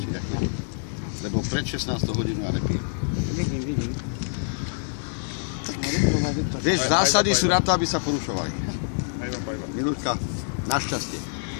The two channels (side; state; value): right; silent; digital silence